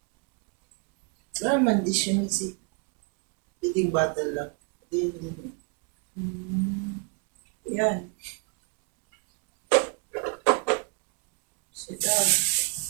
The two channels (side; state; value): left; quieter; 35.2 dB